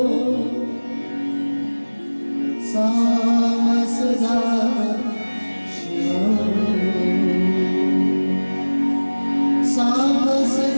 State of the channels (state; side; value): inverted; both; correlation -1.00